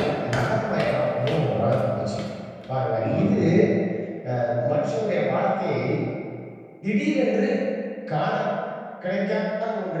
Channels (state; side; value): identical; both; correlation 1.00